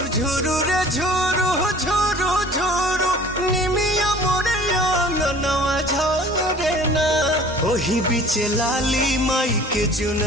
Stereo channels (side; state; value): both; normal; correlation 0.48